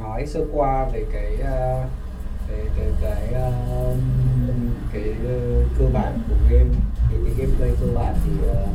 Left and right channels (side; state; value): both; identical; correlation 1.00